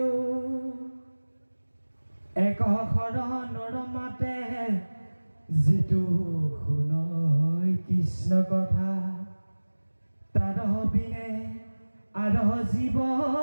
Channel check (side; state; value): both; inverted; correlation -1.00